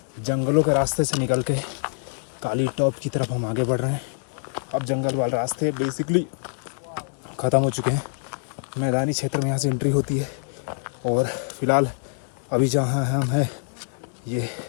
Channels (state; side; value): silent; right; digital silence